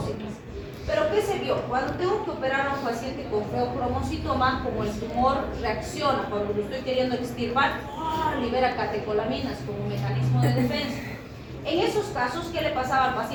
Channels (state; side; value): identical; both; correlation 1.00